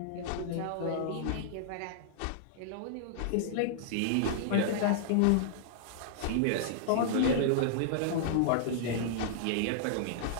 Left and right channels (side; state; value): both; different; correlation -0.01